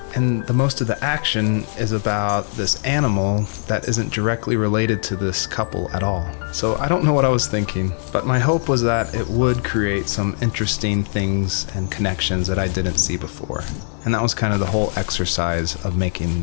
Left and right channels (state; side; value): silent; right; 65 dB below the other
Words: and the most of the action is about this animal that isn't directly related to this couple at all. So I don't know what I was thinking, but my hope was that it would create some interesting things and connections that I didn't see before. And that was kind of the whole exercise of